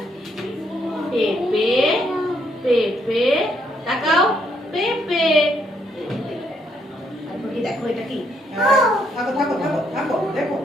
পেঁপে, পেঁপে, তাকাও পেঁপে। তারপর কি দেখো এটা কি? থাকো থাকো থাকো থাকো দেখো।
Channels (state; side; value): normal; both; correlation 0.73